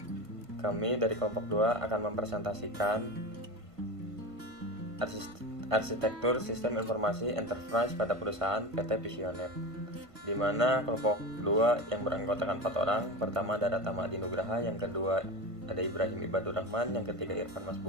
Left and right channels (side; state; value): left; late; 1.5 ms